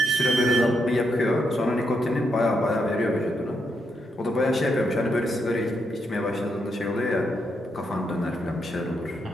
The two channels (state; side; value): normal; both; correlation 0.80